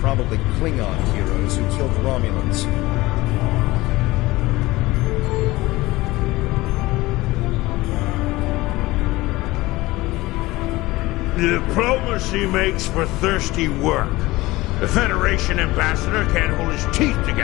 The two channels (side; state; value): right; quieter; 19.6 dB